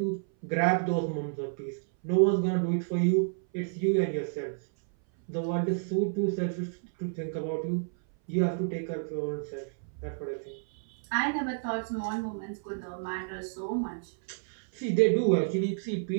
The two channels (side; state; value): left; silent; 58 dB below the other